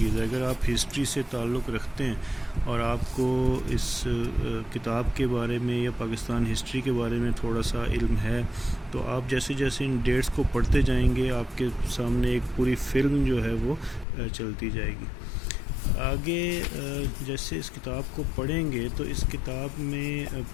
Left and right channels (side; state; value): right; drops out; at 14.1 s